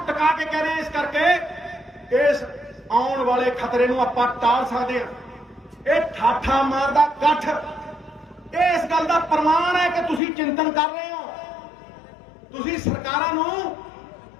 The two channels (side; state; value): right; drops out; at 10.2 s